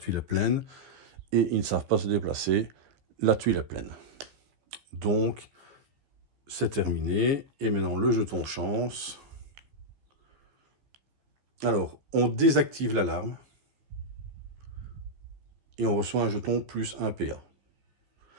est pleine. Et ils ne savent pas se déplacer. La tuile est pleine. Donc, c'est terminé. Et maintenant, le jeton chance. Alors, on désactive l'alarme. Et on reçoit un jeton plus 1 PA.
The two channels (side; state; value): left; late; 15 ms